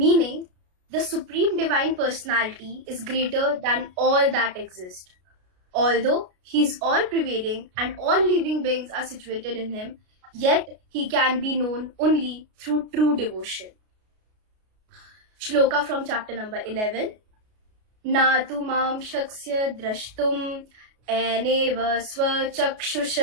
the Supreme Divine Personality is greater than all that exist. Although He is all-pervading and all living beings are situated in Him, yet he can be known only through true devotion. Shloka from chapter number 11. Na tu mam shaksya drashtum eneva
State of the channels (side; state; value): left; late; 33 ms